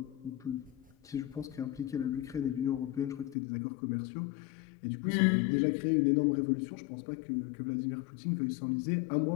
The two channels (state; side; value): drops out; right; at 3.4 s